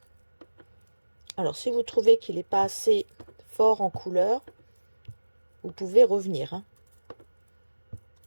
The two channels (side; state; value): both; inverted; correlation -1.00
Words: Alors si vous trouvez qu'il n'est pas assez fort en couleur, vous pouvez revenir, hein.